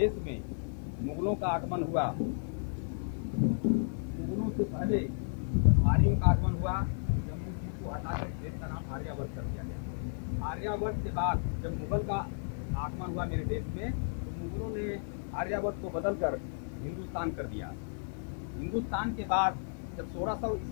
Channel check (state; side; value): silent; right; digital silence